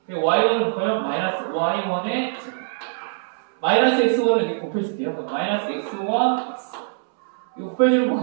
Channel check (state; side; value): silent; left; 64 dB below the other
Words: y1을 곱하면 마이너스 y1의 제곱. 마이너스 x1을 이렇게 곱해줄게요. 그럼 마이너스 x1, x. 이거 곱해주면